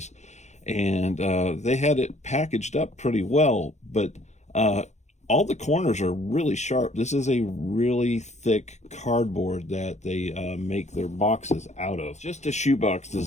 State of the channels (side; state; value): right; late; 0.33 ms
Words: and they had it packaged up pretty well, but all the corners are really sharp. This is a really thick cardboard that they make their boxes out of. Just a shoebox